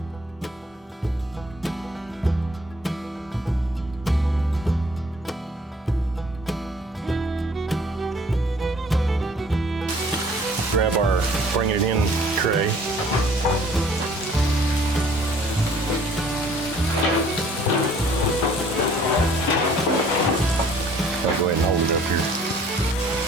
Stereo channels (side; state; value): both; normal; correlation 0.56